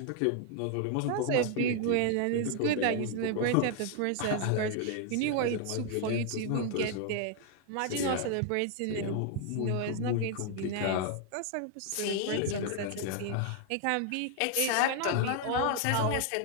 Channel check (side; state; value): both; different; correlation 0.00